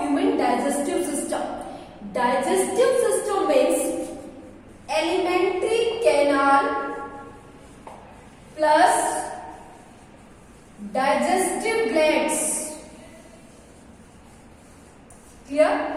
human digestive system. Digestive system means alimentary canal plus digestive glands. Clear?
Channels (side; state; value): both; identical; correlation 1.00